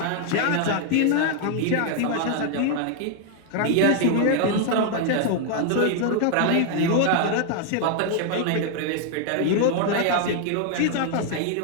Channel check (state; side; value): different; both; correlation 0.00